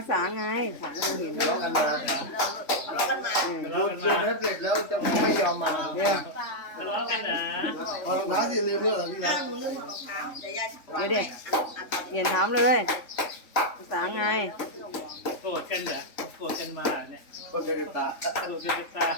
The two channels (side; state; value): right; late; 3.5 ms